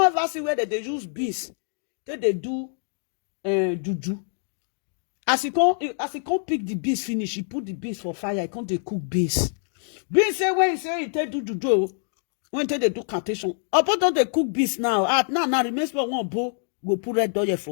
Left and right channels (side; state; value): right; silent; 62 dB below the other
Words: ever see where they use beast. They do juju. As he can't pick the beast finish, he put the beast for fire. He can't dey cook beast. Beast say when he say he take do juju, when they do cantation. About don't they cook beast now? Now remains for one bow go put red oil